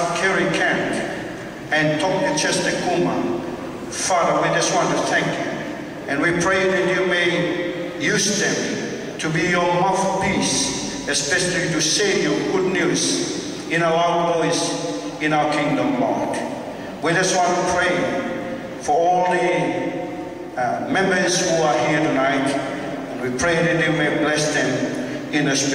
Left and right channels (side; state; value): both; identical; correlation 1.00